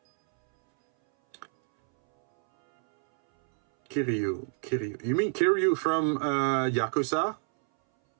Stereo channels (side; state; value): left; silent; 60 dB below the other